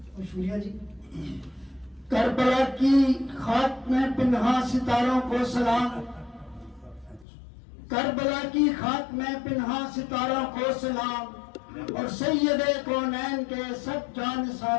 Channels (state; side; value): drops out; right; at 7.2 s